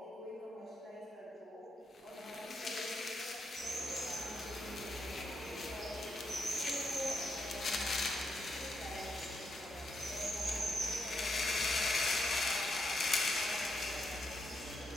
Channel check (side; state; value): both; normal; correlation 0.80